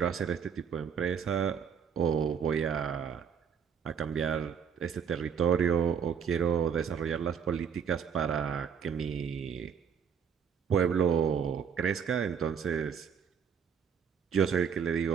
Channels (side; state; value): left; quieter; 7.2 dB